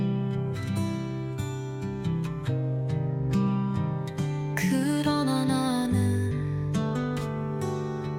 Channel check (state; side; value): identical; both; correlation 1.00